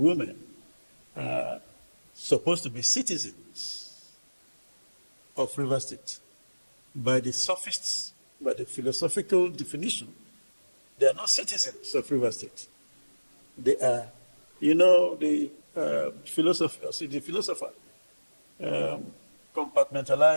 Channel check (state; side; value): inverted; both; correlation -1.00